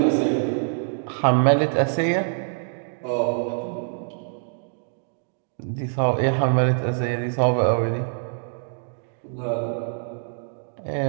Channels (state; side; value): silent; left; 62 dB below the other